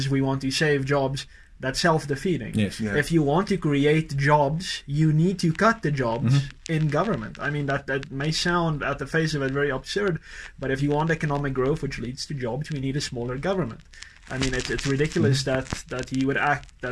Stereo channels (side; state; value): both; identical; correlation 1.00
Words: we want to save jobs, that's self-defeating. Yes. Yeah. If you want to create jobs, you need to cut the jobs in government. I mean, that may sound at the face of it very absurd, but if you want economic growth, which leads to jobs, we need a smaller government. I mean, it's ridiculous that